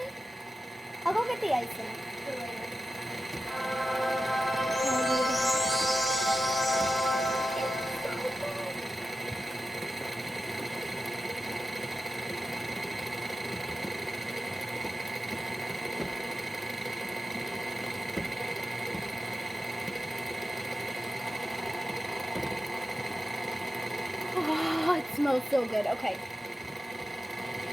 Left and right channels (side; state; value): both; normal; correlation 0.91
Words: I'll go get the icing for later. smells so good. Okay.